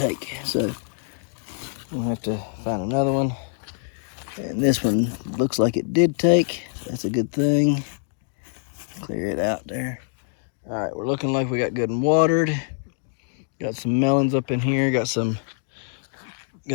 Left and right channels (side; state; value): right; silent; digital silence